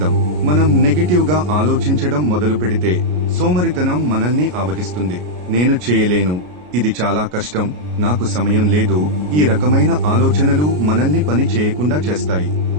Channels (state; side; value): late; left; 33 ms